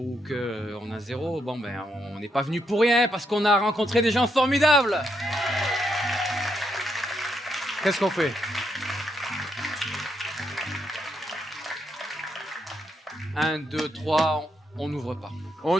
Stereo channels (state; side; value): normal; both; correlation 0.79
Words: qu'on a 0, on n'est pas venu pour rien, parce qu'on a rencontré des gens formidables. Qu'est-ce qu'on fait? 1, 2, 3, on n'ouvre pas. On